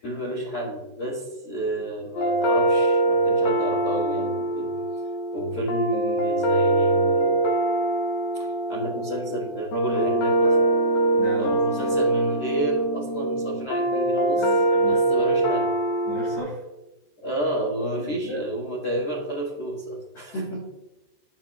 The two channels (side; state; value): right; late; 14 ms